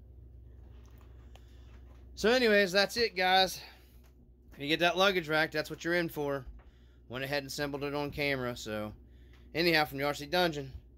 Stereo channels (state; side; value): identical; both; correlation 1.00